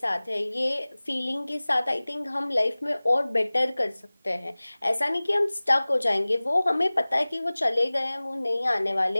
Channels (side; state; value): both; inverted; correlation -0.99